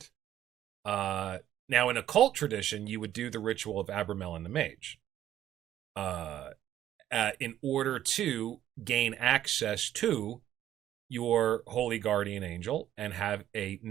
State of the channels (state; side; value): quieter; left; 11.9 dB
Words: now in occult tradition, you would do the ritual of Abramelin the Mage in order to gain access to your holy guardian angel and have a